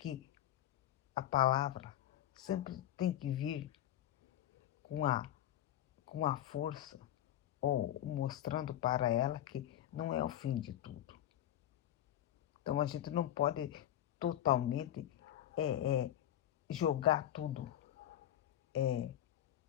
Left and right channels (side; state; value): right; quieter; 12.1 dB